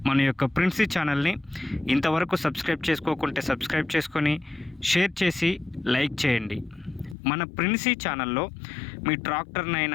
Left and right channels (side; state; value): right; drops out; at 7.2 s